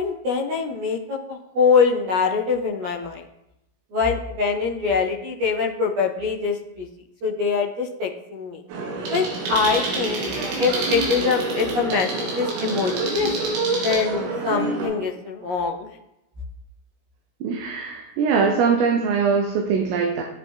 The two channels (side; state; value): left; late; 17 ms